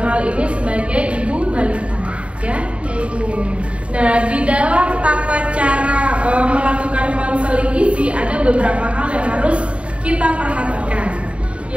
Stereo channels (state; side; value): late; left; 0.061 ms